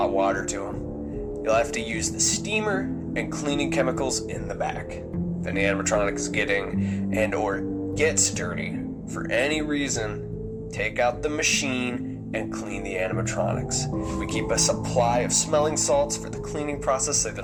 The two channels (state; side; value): identical; both; correlation 1.00